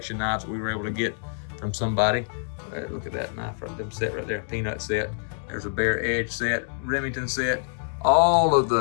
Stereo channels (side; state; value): right; silent; digital silence